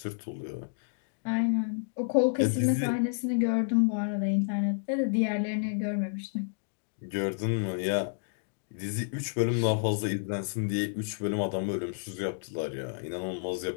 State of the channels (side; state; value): right; silent; digital silence